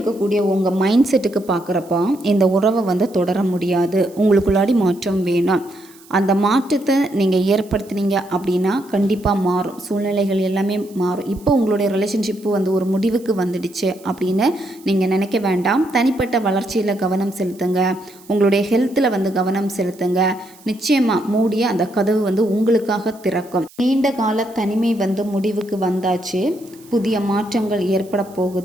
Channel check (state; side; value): noise; right; hiss, 25 dB below the sound